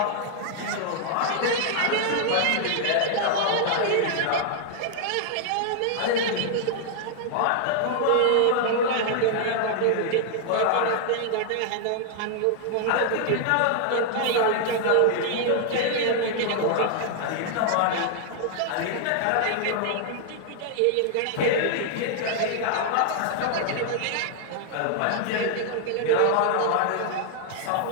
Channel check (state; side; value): different; both; correlation -0.01